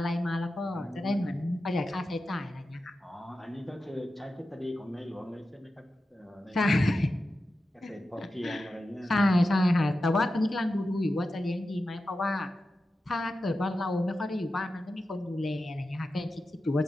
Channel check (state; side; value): normal; both; correlation 0.92